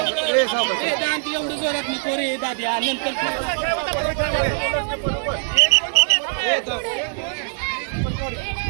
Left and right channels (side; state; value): left; silent; 64 dB below the other